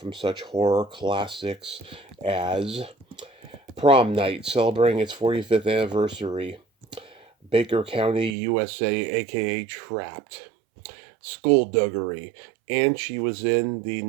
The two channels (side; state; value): left; drops out; at 8.3 s